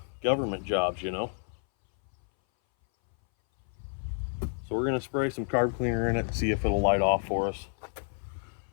government jobs, you know. So we're gonna spray some carb cleaner in it and see if it'll light off for us.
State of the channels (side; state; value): right; silent; 58 dB below the other